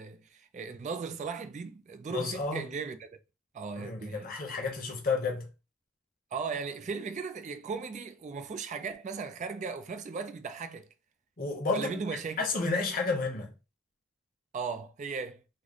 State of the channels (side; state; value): both; normal; correlation 0.38